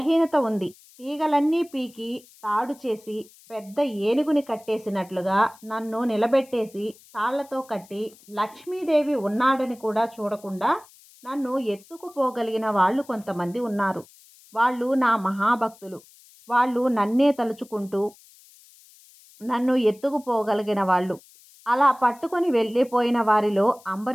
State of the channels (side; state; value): left; noise; hiss, 25 dB below the sound